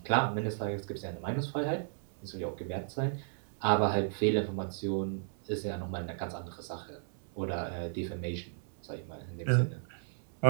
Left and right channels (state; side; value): silent; left; 55 dB below the other